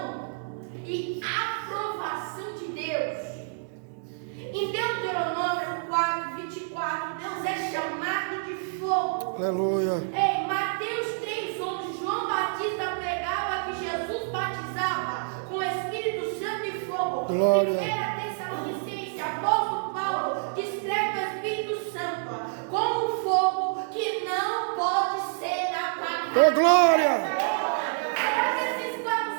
e aprovação de Deus. Em Deuteronômio 4:24, Deus é chamado de fogo. Aleluia. Em Mateus 3:11, João Batista pregava que Jesus batizava com o Espírito Santo e fogo. Glória. 1 Tessalonicenses, apóstolo Paulo descreve o Espírito Santo como um fogo que não pode ser apagado. Oh, glória. Será que esses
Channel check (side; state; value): left; silent; digital silence